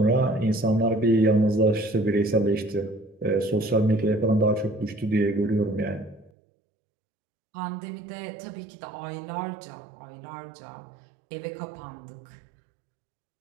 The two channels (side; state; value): left; drops out; at 6.3 s